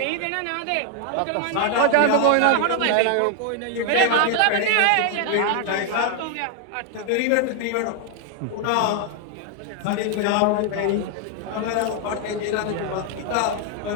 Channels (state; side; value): different; both; correlation 0.00